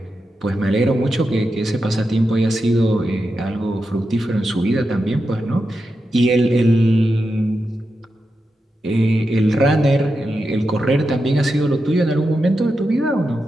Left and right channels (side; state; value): both; normal; correlation 0.88